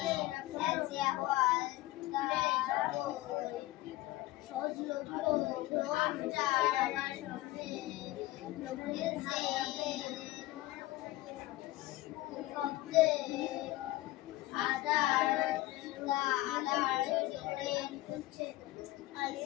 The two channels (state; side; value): quieter; right; 17.4 dB